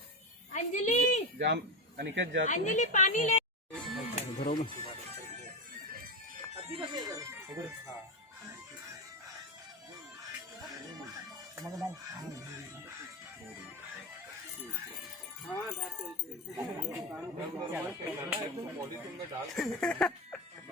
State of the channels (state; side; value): normal; both; correlation 0.15